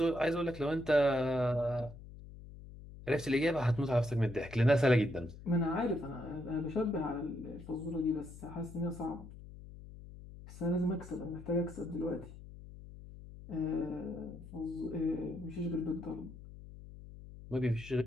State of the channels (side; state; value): left; noise; hum, 15 dB below the sound